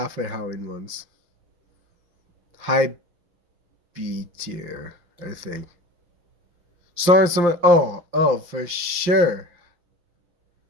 Halloween ones. High B tier, I think. Sorry, someone. Oh, for sure.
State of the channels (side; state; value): left; late; 5.8 ms